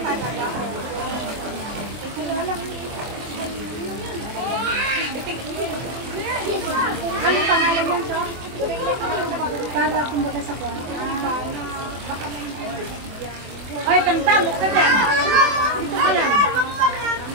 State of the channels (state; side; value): late; left; 24 ms